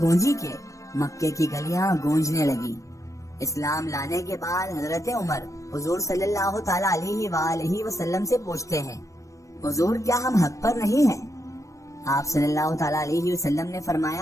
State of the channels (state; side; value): late; right; 0.15 ms